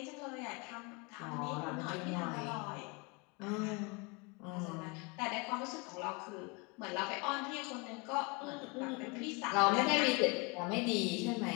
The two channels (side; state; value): right; quieter; 29.0 dB